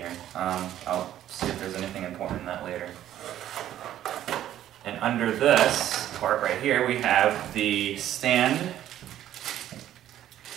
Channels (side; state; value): left; quieter; 12.0 dB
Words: I'll see if there's anything important in that later. And under this part right here, we have the stand